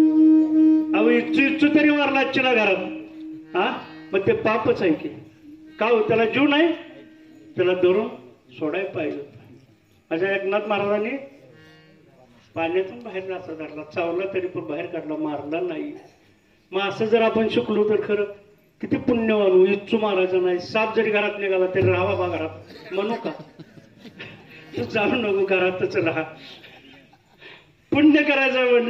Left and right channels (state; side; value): identical; both; correlation 1.00